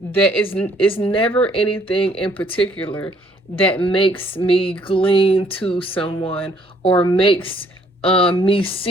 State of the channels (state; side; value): normal; both; correlation 0.64